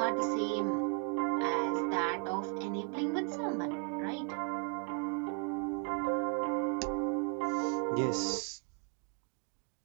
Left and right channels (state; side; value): quieter; left; 37.4 dB